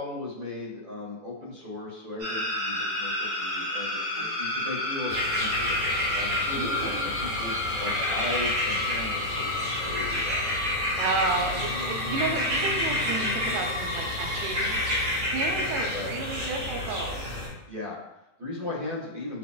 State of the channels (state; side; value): late; left; 18 ms